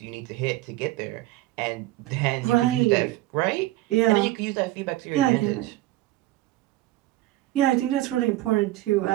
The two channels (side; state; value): left; quieter; 16.6 dB